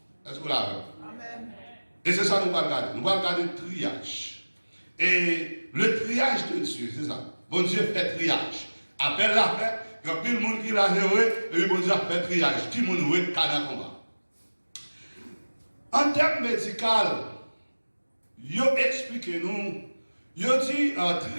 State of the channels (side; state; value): both; inverted; correlation -1.00